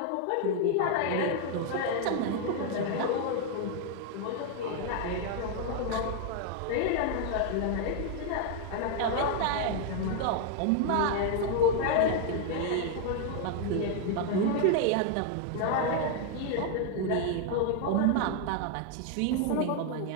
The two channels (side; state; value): both; different; correlation 0.00